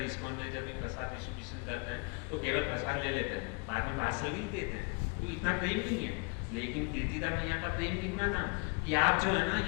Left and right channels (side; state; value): right; quieter; 32.2 dB